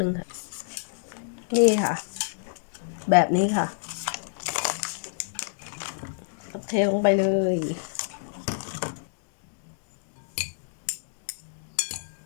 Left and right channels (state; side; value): silent; right; digital silence